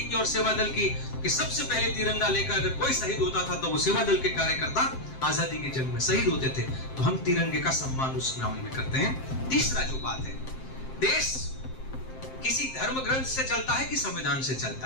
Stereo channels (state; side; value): late; right; 7.6 ms